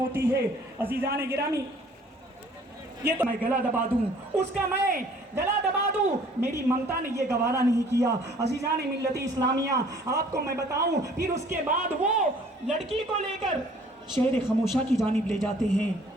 है। अजीज़ान गिरामी, ये तो मैं गला दबा दूं, उसका मैं गला दबा दूं, मेरी ममता ने ये गवारा नहीं किया। अजीज़ान मिल्लत इस्लामिया, आपको मैं बताऊं, फिर उसके बाद वो लड़की को लेकर शहर खामोशा की जानिब ले जाते हैं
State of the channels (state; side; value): normal; both; correlation 0.55